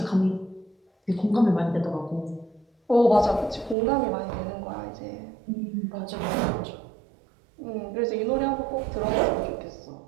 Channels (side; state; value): left; drops out; at 3.8 s